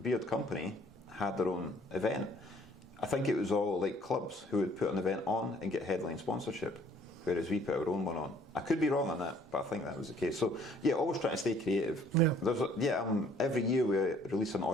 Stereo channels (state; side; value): normal; both; correlation 0.59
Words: company had their own event. I think it was all like clubs who would put an event on and get headline sponsorship, whereas we put our own one on. I could be wrong on that, but I think that was the case. So yeah, always trying to stay creative. Every year we release an